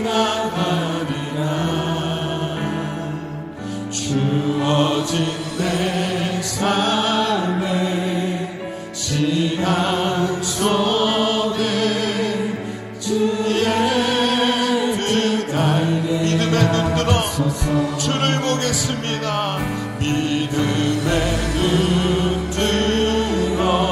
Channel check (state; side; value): identical; both; correlation 1.00